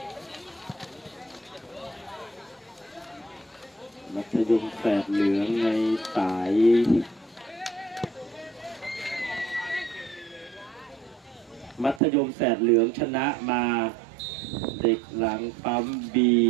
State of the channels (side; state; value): left; drops out; at 12.0 s